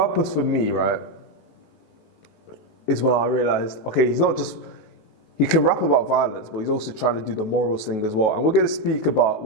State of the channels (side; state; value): right; late; 19 ms